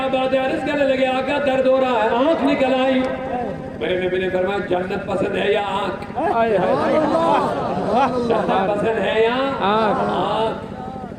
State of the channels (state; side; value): identical; both; correlation 1.00